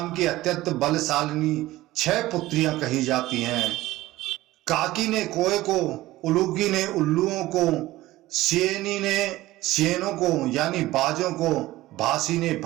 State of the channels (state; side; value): quieter; left; 17.1 dB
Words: की अत्यंत बलशालिनी 6 पुत्रियां कही जाती हैं। काकी ने कोए को, उलूकी ने उल्लुओं को, सेनी ने सेनों को यानी बाजों को, भासी ने